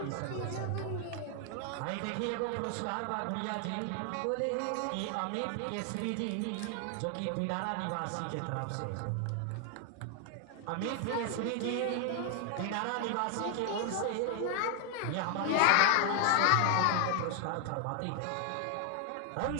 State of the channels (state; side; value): different; both; correlation 0.00